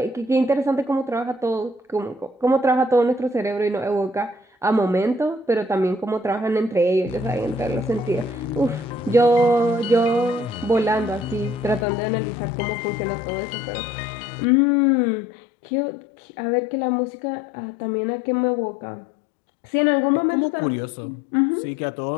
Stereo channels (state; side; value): drops out; right; at 11.9 s